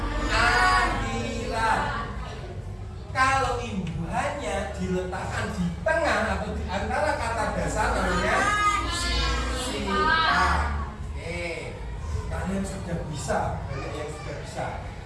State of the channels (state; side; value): identical; both; correlation 1.00